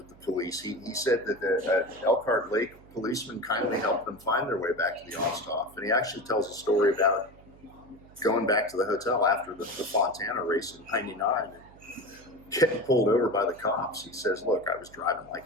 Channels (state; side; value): noise; right; hum, 23 dB below the sound